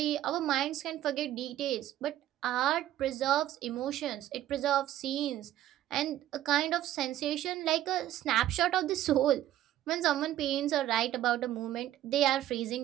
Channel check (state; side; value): quieter; left; 13.2 dB